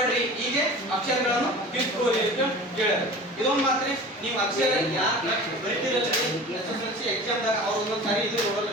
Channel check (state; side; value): normal; both; correlation 0.38